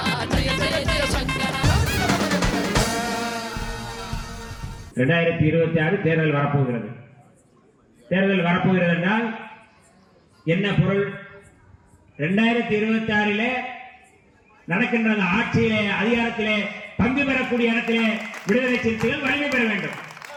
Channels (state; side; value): identical; both; correlation 1.00